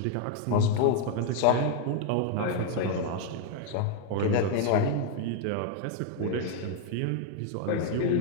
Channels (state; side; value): different; both; correlation 0.00